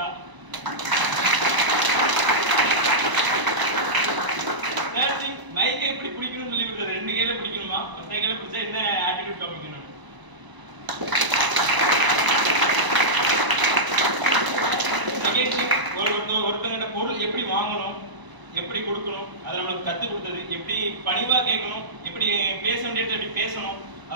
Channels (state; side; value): late; left; 1.0 ms